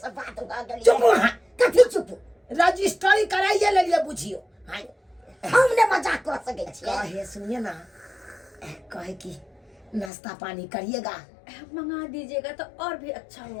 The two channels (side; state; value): right; drops out; at 10.1 s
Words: बात भ गेल चुप कथी चुप रजिस्ट्री कराइए लेलिए बुझियो हाय हमने मजाक कर सके छियै कहे सुनिए ना कहे कि नाश्ता पानी करिएगा मंगा दीजिएगा तो और भी अच्छा